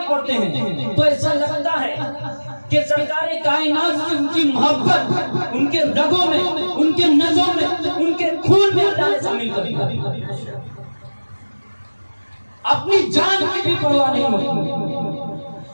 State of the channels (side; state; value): both; inverted; correlation -1.00